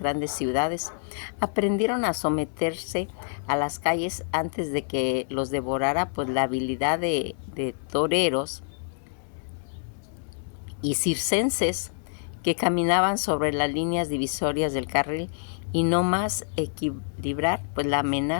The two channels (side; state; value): right; silent; digital silence